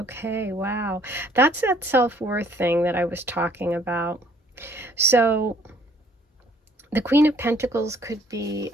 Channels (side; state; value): both; normal; correlation 0.61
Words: wow. That's that self-worth thing that I was talking about. So the Queen of Pentacles could be